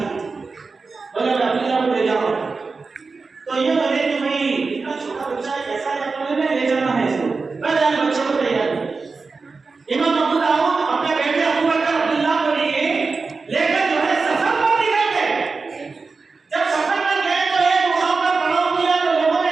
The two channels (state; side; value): quieter; left; 4.3 dB